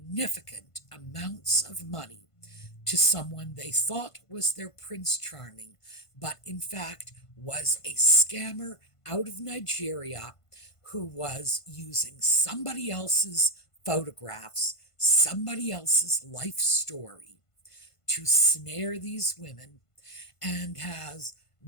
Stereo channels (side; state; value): right; late; 1.5 ms